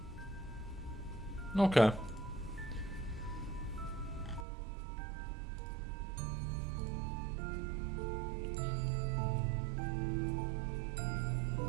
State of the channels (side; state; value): left; drops out; at 4.5 s